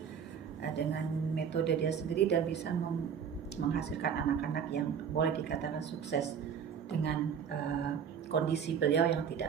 dengan metode dia sendiri, dan bisa menghasilkan anak-anak yang boleh dikatakan sukses dengan kondisi beliau yang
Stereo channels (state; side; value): quieter; left; 7.5 dB